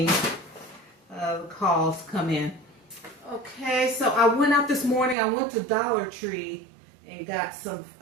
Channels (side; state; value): left; drops out; at 5.2 s